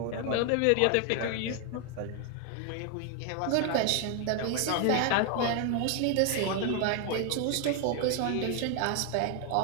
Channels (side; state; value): both; different; correlation 0.01